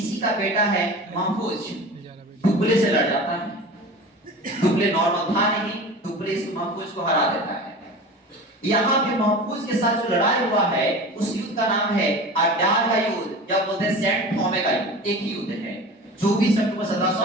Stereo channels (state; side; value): normal; both; correlation 0.35